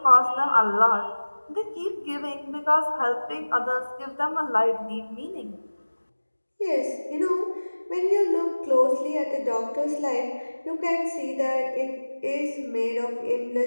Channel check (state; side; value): inverted; both; correlation -1.00